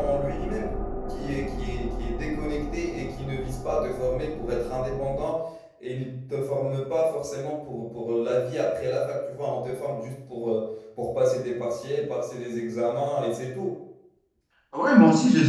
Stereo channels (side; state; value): both; identical; correlation 1.00